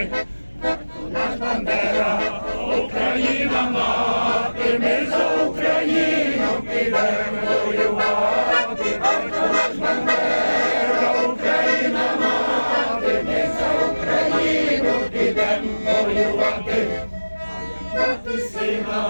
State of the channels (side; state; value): both; inverted; correlation -1.00